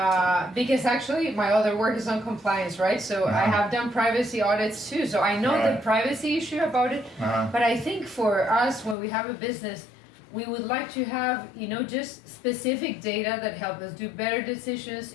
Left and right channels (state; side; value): drops out; right; at 9.0 s